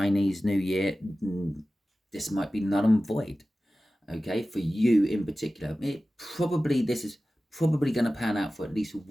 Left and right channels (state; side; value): normal; both; correlation 0.95